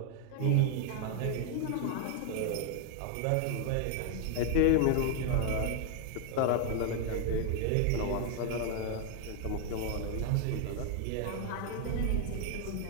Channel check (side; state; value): both; different; correlation 0.00